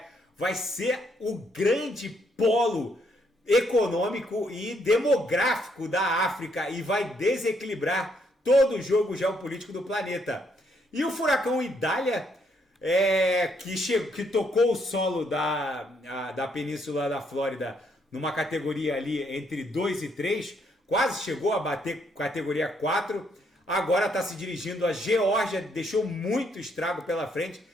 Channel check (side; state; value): both; normal; correlation 0.72